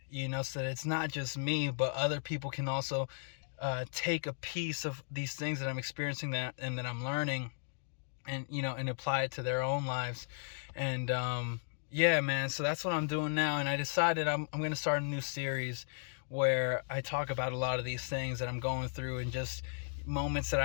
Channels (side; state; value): right; silent; digital silence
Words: so that it's not just me, but other people can also take a piece of these things that I'm experiencing and that I'm learning, and and apply it to their own lives. And yeah, man, so that's what I'm doing now. And I decided I'm going to start a new series where I talk about a lot of these things that I'm going through, and just moments that